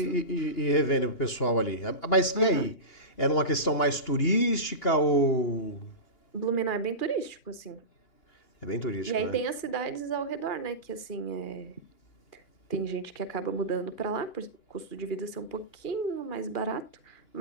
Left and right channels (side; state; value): right; late; 2.8 ms